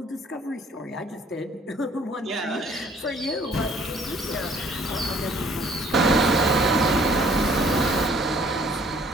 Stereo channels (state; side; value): normal; both; correlation 0.59